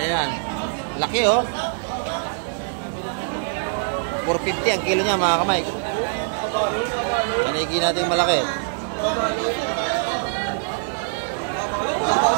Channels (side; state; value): left; silent; digital silence